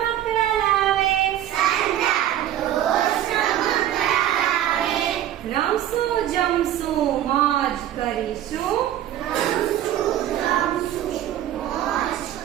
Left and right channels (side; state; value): left; quieter; 11.9 dB